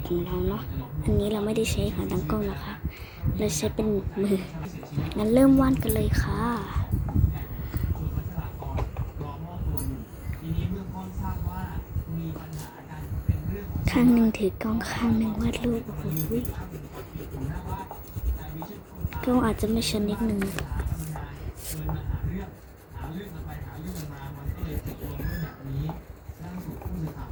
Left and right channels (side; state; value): both; identical; correlation 1.00